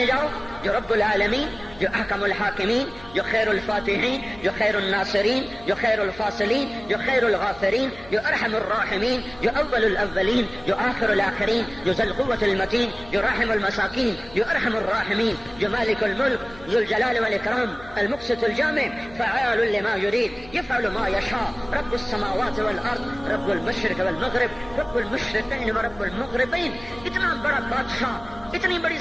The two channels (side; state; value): left; noise; hum, 21 dB below the sound